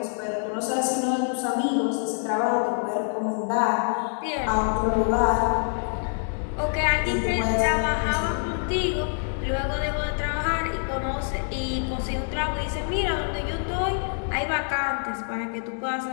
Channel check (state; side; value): silent; right; 61 dB below the other